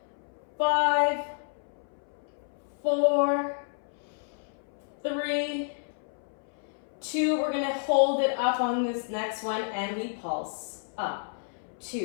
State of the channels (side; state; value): right; silent; 58 dB below the other